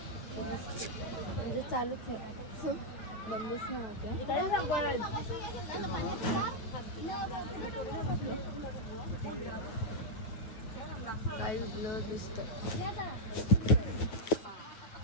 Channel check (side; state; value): right; late; 9.1 ms